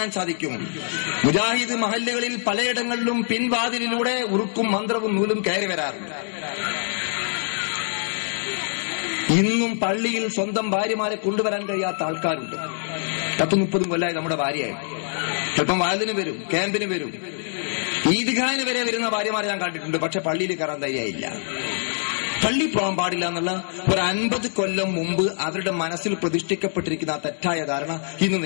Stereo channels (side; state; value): right; silent; digital silence